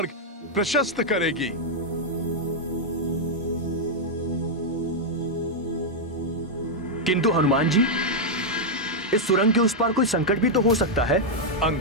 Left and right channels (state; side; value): normal; both; correlation -0.03